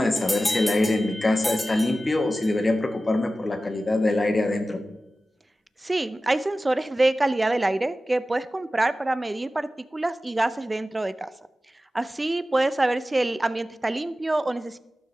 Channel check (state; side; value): normal; both; correlation 0.95